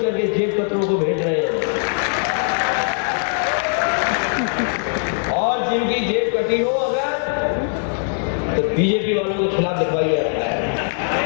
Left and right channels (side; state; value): right; silent; digital silence